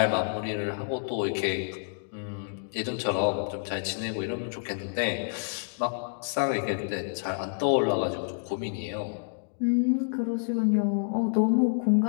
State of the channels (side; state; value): right; silent; digital silence